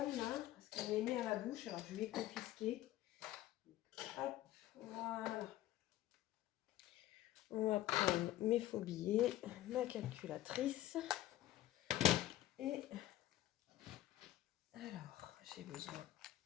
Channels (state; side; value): quieter; right; 14.4 dB